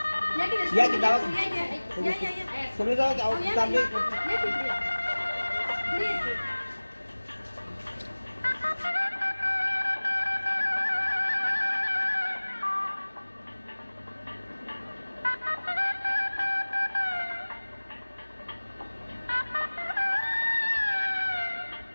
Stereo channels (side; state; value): both; inverted; correlation -1.00